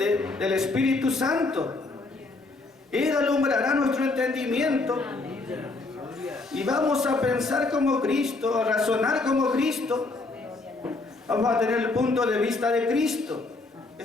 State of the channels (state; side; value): quieter; right; 3.4 dB